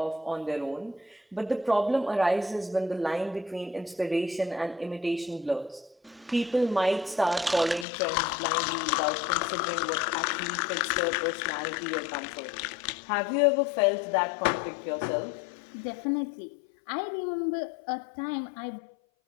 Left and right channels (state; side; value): drops out; right; at 7.9 s